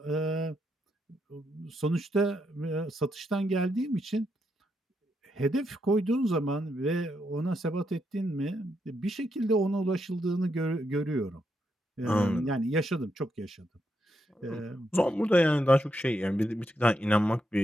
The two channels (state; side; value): normal; both; correlation 0.81